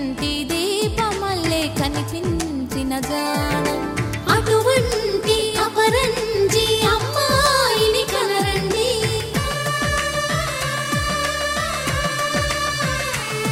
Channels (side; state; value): both; identical; correlation 1.00